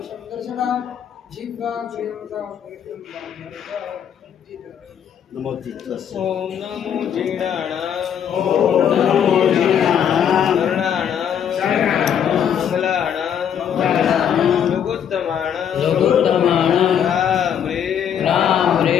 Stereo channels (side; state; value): right; quieter; 8.7 dB